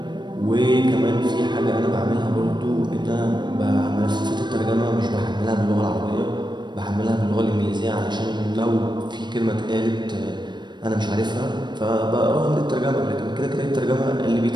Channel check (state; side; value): late; left; 0.22 ms